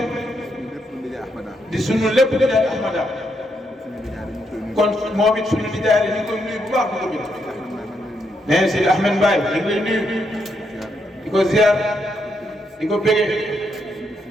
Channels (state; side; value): normal; both; correlation 0.79